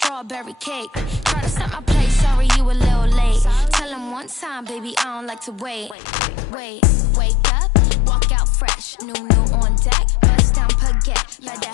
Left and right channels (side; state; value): right; drops out; at 6.0 s